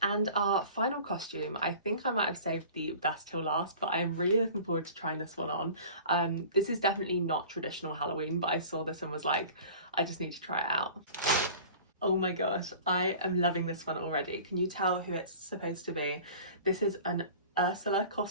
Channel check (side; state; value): both; inverted; correlation -0.42